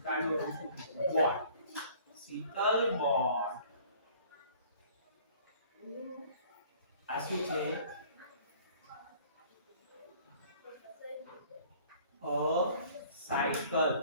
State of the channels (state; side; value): inverted; both; correlation -0.53